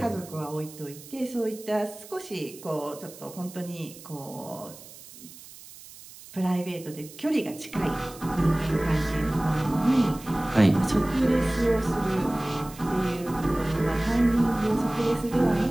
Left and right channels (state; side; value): noise; right; hiss, 18 dB below the sound